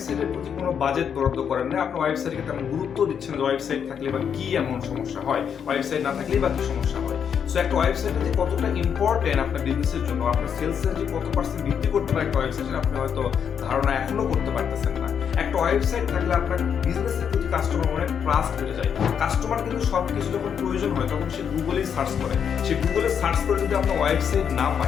প্রতি কোনো বাজেট বরাদ্দ করেন না, আপনার ওয়েবসাইটকে তেমন গুরুত্ব দিচ্ছেন না। ওয়েবসাইট থাকলে বা কি এমন সমস্যা হয়, ওয়েবসাইট না থাকলেই বা কি সমস্যা হয়। সো একটা ওয়েবসাইটে যে কতটা ইম্পর্টেন্ট আপনার বিজনেসের জন্য, আপনার সেলসের যে কত পার্সেন্ট বৃদ্ধি করতে পারে একটা ওয়েবসাইটের, আপনি হয়তো ধারণা এখনো করতে পারতেছেন না। একটা ওয়েবসাইট থাকলে আপনার বিজনেসের প্রতি কাস্টমার অনেক ট্রাস্ট বেড়ে যায়। কাস্টমার কিন্তু সবকিছু যখন প্রয়োজন হয় তখন সে গুগলেই সার্চ করে। সে গুগলে সার্চ করে যদি আপনার ওয়েবসাইট না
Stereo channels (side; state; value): right; quieter; 7.7 dB